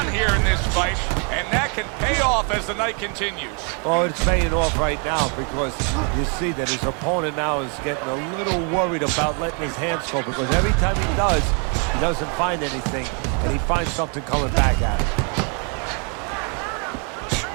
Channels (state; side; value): quieter; left; 38.0 dB